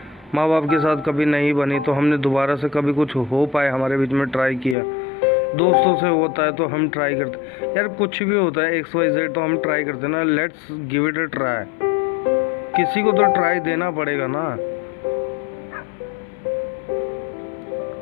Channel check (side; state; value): right; drops out; at 4.8 s